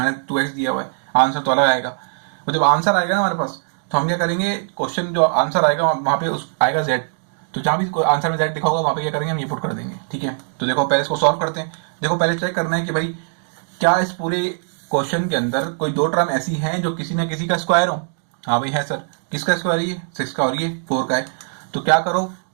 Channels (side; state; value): left; silent; digital silence